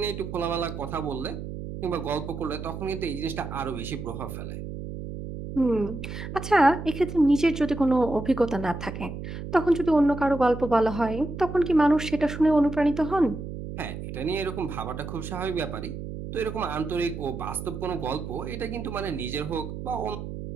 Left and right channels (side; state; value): right; noise; hum, 8 dB below the sound